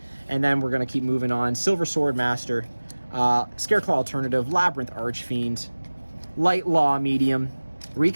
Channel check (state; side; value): inverted; both; correlation -1.00